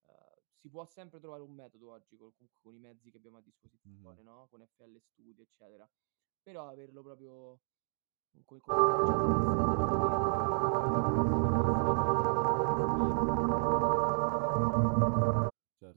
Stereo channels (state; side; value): silent; left; 55 dB below the other